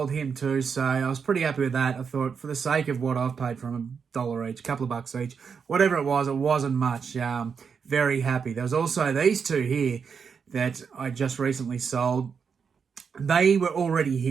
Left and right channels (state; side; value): quieter; left; 6.2 dB